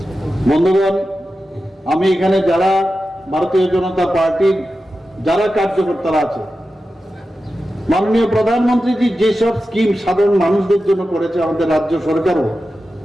বন্ধুগণ, আমি এখানে যারা ভারতীয় জনতা পার্টির যারা কার্যকর্তারা আছে, মাননীয় প্রধানমন্ত্রীজি যেসব স্কিম সাধারণ মানুষদের জন্য করেছে, আমাদের রাজ্য সরকারও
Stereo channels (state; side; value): normal; both; correlation 0.92